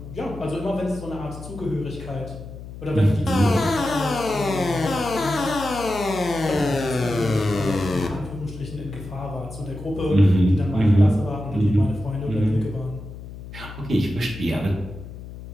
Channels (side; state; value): left; noise; hum, 13 dB below the sound